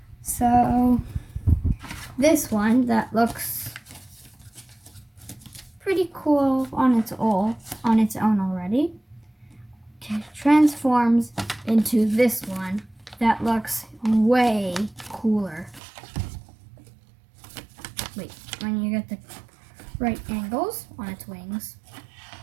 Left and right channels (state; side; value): drops out; left; at 15.8 s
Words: So, this one that looks pretty cool on its own already transforms into this one that looks way cooler. Wait, when you get the right angles on its wings.